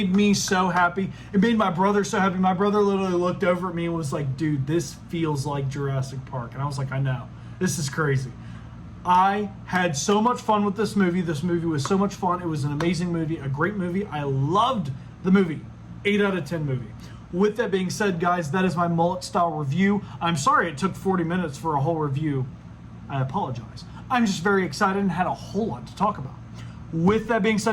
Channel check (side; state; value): both; identical; correlation 1.00